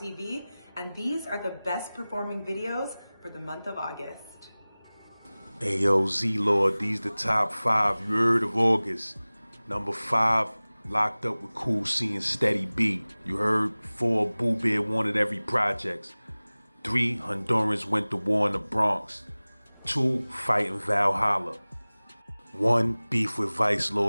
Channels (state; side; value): inverted; both; correlation -0.99